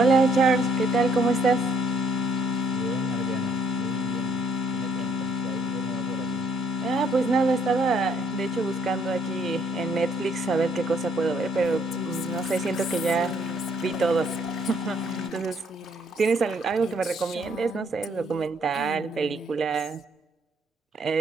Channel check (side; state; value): both; normal; correlation 0.66